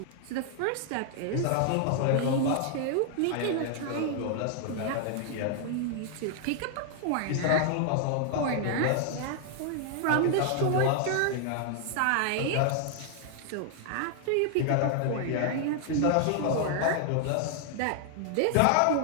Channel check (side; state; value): both; different; correlation 0.00